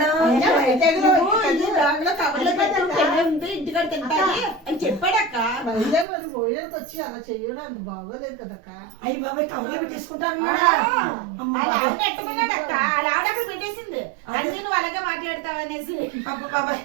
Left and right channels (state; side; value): drops out; left; at 6.1 s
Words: ఇంటికాడ తింటాను అని చెప్పాడక్క. పోయేకి వచ్చి అలా చెయ్యడానికి బాగోలేదు కదక్క. అయ్యి బాబాయ్ కవర్లో పెట్టేసుకుంటానన్నాడా? పెట్టమన్నాడక్క. అలా ఆవిడ అక్కడ పెట్టేసింది. అంటే నువ్వు అలాగే మాట్లాడతావనేసి బాబాయ్